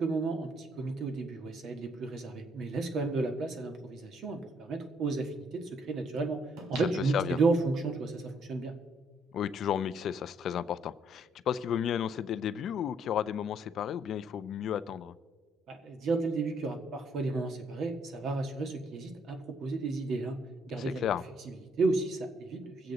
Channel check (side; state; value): both; normal; correlation 0.68